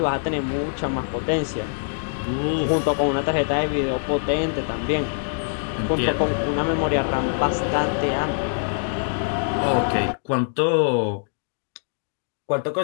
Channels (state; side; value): silent; right; digital silence